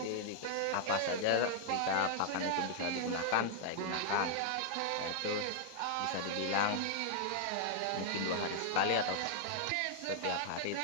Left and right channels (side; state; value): both; different; correlation 0.00